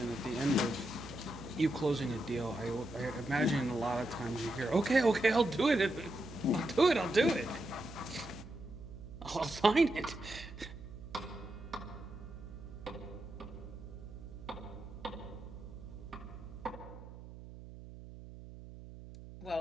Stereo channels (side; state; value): right; noise; hum, 14 dB below the sound